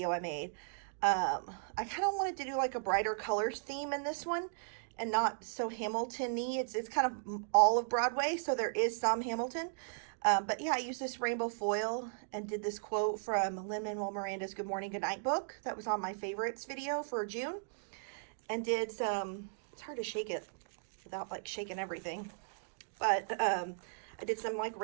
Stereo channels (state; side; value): silent; left; digital silence